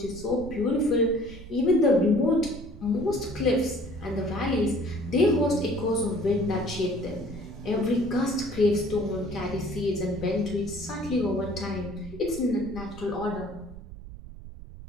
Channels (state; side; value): noise; right; rumble, 14 dB below the sound